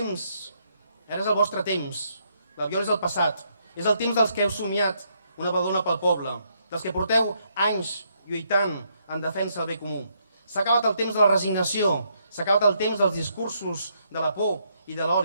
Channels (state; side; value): inverted; both; correlation -0.74